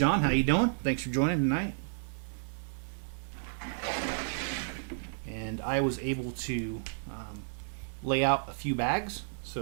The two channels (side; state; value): left; silent; digital silence